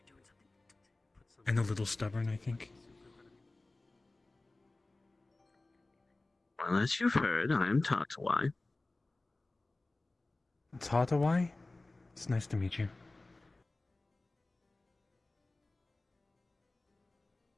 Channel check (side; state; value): right; quieter; 3.0 dB